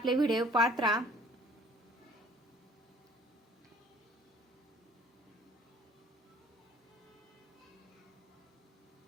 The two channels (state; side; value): normal; both; correlation 0.54